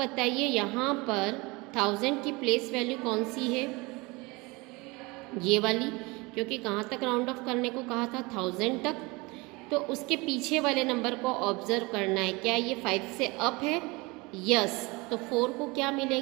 यहाँ पर 1000 की प्लेस वैल्यू कौन सी है? ये वाली, क्योंकि कहाँ तक राउंड ऑफ करने को कहा था 1000 तक। तो उसके पीछे वाले नंबर को ऑब्जर्व करना है। क्या ये 5 से अप है? यस। तो 4 को क्या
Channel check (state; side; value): quieter; left; 25.0 dB